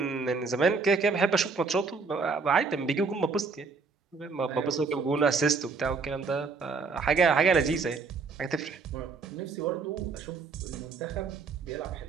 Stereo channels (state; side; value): quieter; left; 4.6 dB